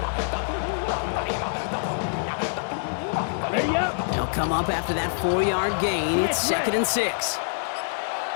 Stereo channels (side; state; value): right; silent; digital silence